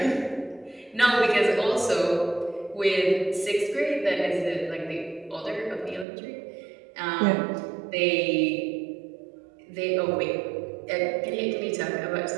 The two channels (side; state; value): left; drops out; at 6.1 s